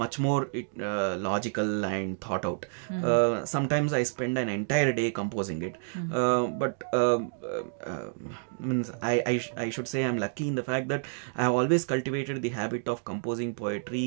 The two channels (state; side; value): silent; left; digital silence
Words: more logical and thought out. Sometimes I spend an entire day composing it, but means I should say I'm lucky in the fact that I have always cultivated the habit of composing